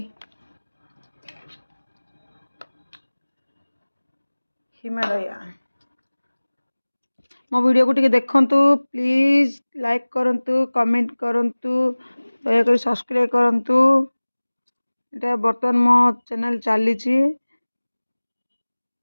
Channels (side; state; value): both; inverted; correlation -1.00